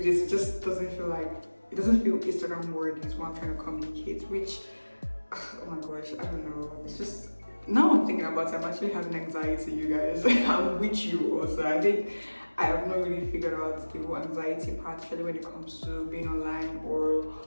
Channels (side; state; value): both; inverted; correlation -1.00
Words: it just doesn't feel Instagram worthy is what I'm trying to communicate, which, oh my gosh, I don't know. It's just, now I'm thinking about it, I'm actually having anxiety, you guys. I'm with you also. I think I have not really figured out the whole anxiety part, especially when it comes to being online or